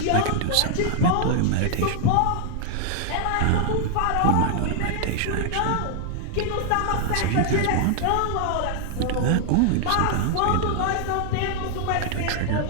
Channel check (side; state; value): both; different; correlation 0.00